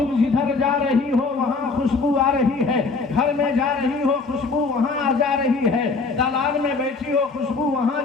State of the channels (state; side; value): quieter; right; 4.2 dB